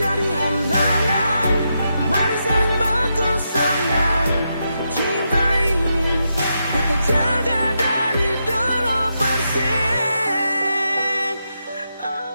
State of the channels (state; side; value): inverted; both; correlation -0.84